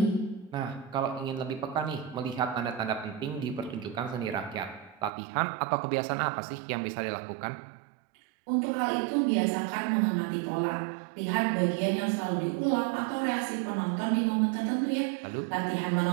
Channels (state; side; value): drops out; left; at 5.1 s